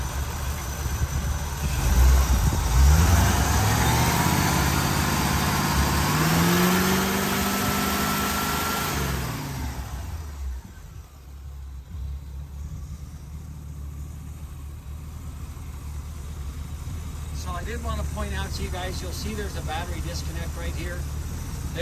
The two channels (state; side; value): identical; both; correlation 1.00